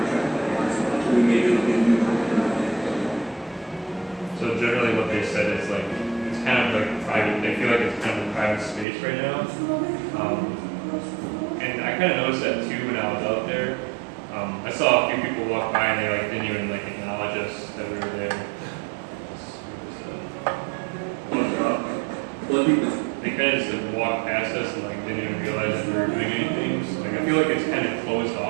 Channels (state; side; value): drops out; left; at 8.8 s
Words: actually maybe it'll be new. So generally what they said is like it's kind of like private. They feel like it's kind of a private space right now. And I kind of noticed that too when I was out there. I saw a few people walk by and they like didn't even like acknowledge us that we were there. They kind of just like walked past us and like didn't even realize that we were doing anything. So like I feel like it's kind of closed